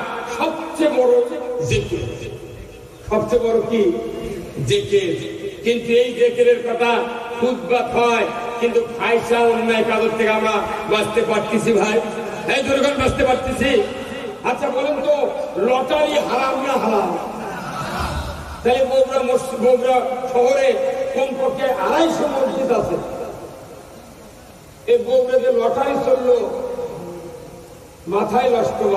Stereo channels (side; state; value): both; identical; correlation 1.00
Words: সবচেয়ে বড় জিকির। সবচেয়ে বড় কি? জিকির। কিন্তু এই জিকিরের কথা খুতবা হয়, কিন্তু ফাহিশা, অন্যায় কাজের থেকে আমরা বাঁচতে পারতেছি ভাই? এই দুর্গণ বাঁচতে পারতেছি? আচ্ছা বলেন তো, লটারি হারাম না হালাল? তাহলে বগুড়া শহরে কমপক্ষে 250 মসজিদ আছে। এই বগুড়া যে লটারি চললো, মাথায় নষ্ট